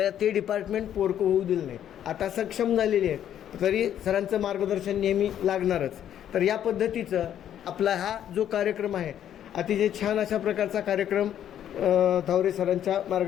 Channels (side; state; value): right; quieter; 10.4 dB